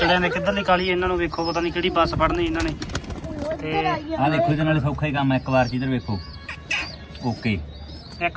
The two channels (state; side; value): identical; both; correlation 1.00